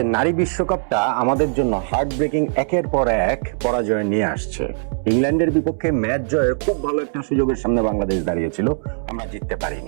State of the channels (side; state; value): left; silent; 65 dB below the other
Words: নারী বিশ্বকাপটা আমাদের জন্য হার্ট ব্রেকিং একের পর এক পরাজয় নিয়ে আসছে। ইংল্যান্ডের বিপক্ষে ম্যাচ জয়ের খুব ভালো একটা সুযোগের সামনে বাংলাদেশ দাঁড়িয়েছিল, আমরা জিততে